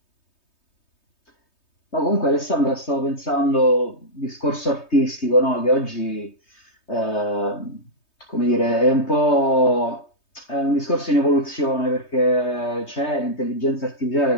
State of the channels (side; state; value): right; late; 3.2 ms